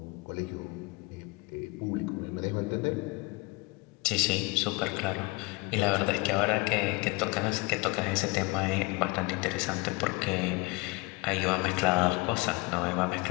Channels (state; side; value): quieter; right; 25.8 dB